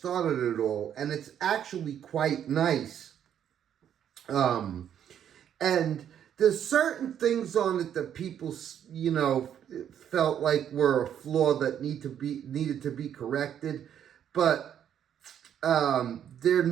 it all, and it's actually quite nice. And there's certain things on it that people, felt like were a flaw that needed to be corrected, but they're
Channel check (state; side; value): quieter; left; 9.5 dB